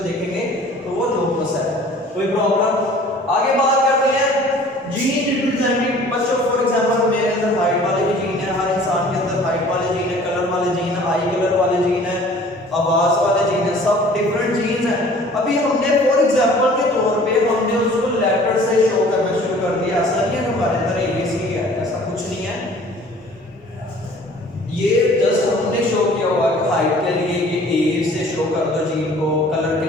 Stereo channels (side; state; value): both; normal; correlation 0.50